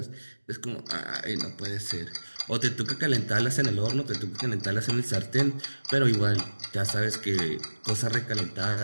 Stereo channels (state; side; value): inverted; both; correlation -1.00